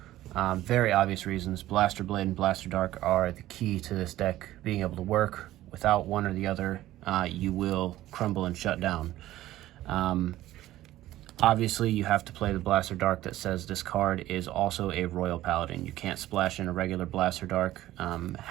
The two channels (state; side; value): quieter; left; 14.9 dB